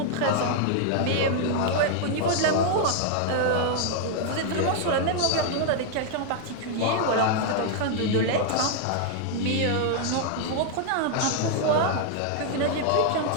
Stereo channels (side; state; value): both; different; correlation 0.00